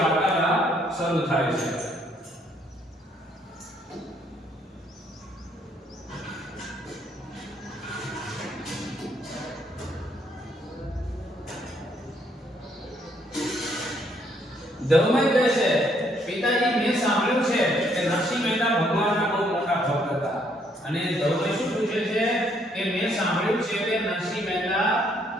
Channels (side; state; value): both; normal; correlation 0.69